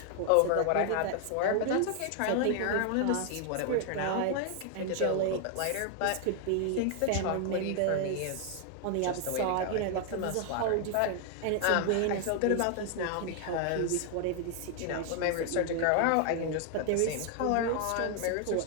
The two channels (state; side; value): different; both; correlation 0.00